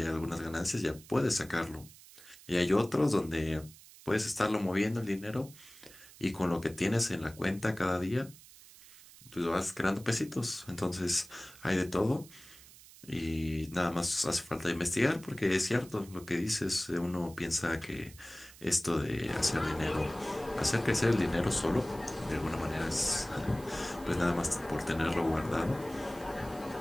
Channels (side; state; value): right; noise; hiss, 20 dB below the sound